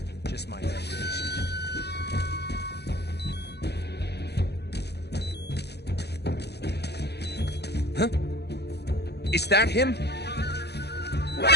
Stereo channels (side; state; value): right; late; 0.48 ms